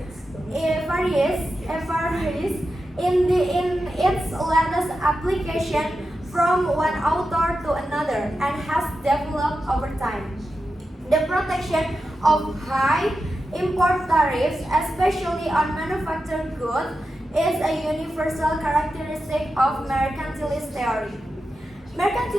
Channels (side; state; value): both; normal; correlation 0.90